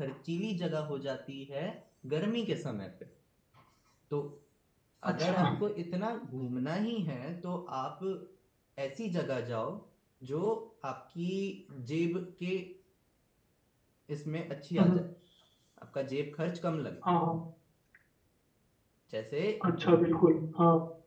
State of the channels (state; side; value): identical; both; correlation 1.00